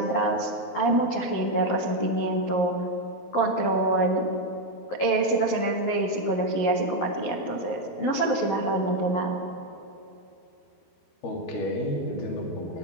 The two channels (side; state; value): right; late; 11 ms